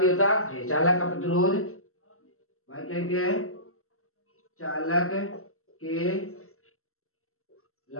होता है। चालक का प्रतिरोध भाई क्या लिखते हैं चालक के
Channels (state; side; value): late; right; 0.63 ms